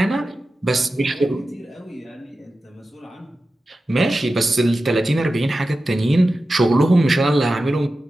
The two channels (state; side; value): normal; both; correlation 0.93